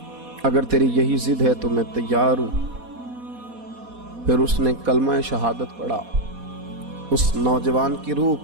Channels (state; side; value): late; left; 4.1 ms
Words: اگر تیری یہی ضد ہے تو میں تیار ہوں۔ پھر اس نے کلمہ شہادت پڑھا، اس نوجوان کی روح